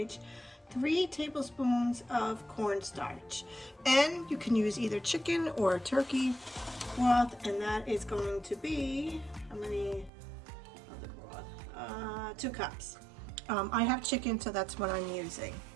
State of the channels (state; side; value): drops out; left; at 10.1 s